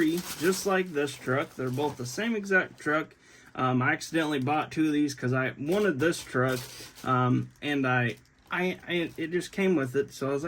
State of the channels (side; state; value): both; identical; correlation 1.00